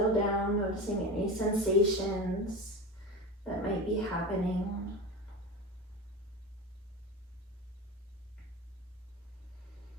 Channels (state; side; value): normal; both; correlation 0.26